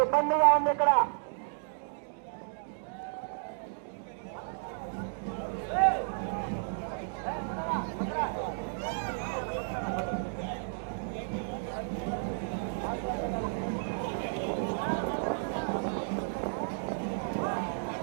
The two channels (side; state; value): left; silent; digital silence